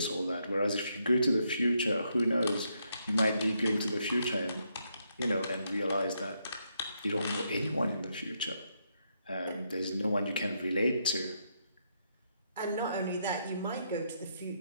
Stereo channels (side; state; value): both; inverted; correlation -0.77